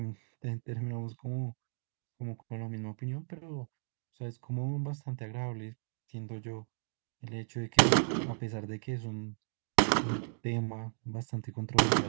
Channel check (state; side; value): silent; left; digital silence